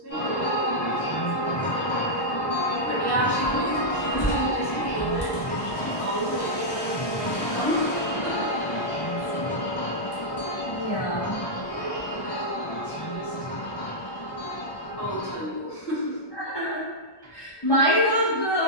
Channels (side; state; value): right; late; 1.1 ms